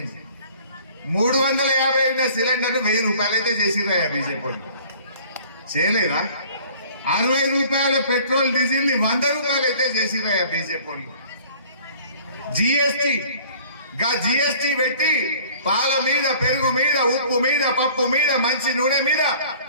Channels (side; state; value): both; inverted; correlation -0.51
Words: 350 సిలిండర్ 1000 రూపాయలు అయితే చేసిండ్రా బీజేపీ వాళ్ళు? చేయలేదా? 60 రూపాయల పెట్రోల్ డీజిల్ ని 100 రూపాయలు అయితే చేసిండ్రా బీజేపీ వాళ్ళు? జిఎస్టీ పెట్టి పాల మీద, పెరుగు మీద, ఉప్పు మీద, పప్పు మీద, మంచి నూనె మీద